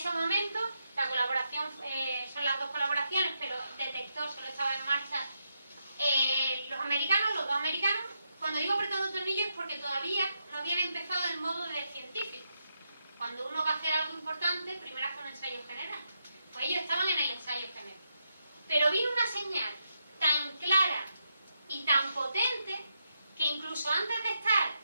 momento, la colaboración, son las dos colaboraciones, pero el detector solo estaba en marcha los dos americanos. Cuando digo apretando tornillos es porque todavía no habían empezado el modo de científico. Cuando uno va a hacer algo importante, primero hace un ensayo general. Pues ellos estaban en el ensayo general. Pero vino una señal tan clara y tan potente que incluso antes de estar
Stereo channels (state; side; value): inverted; both; correlation -0.83